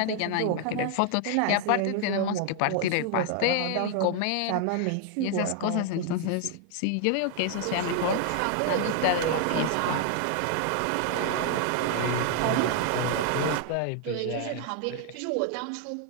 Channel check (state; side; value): different; both; correlation 0.00